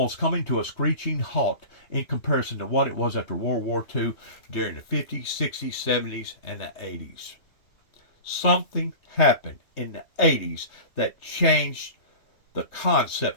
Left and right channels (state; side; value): late; right; 3.3 ms